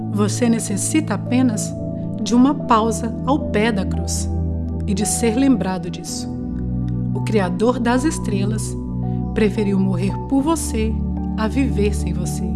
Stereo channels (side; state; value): both; identical; correlation 1.00